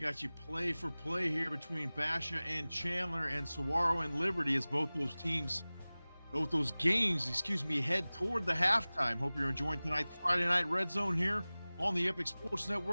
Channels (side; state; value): both; inverted; correlation -0.99